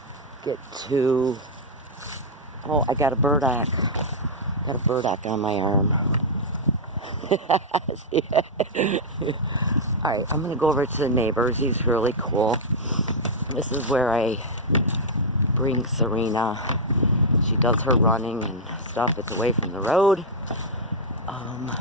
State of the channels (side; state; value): both; normal; correlation -0.04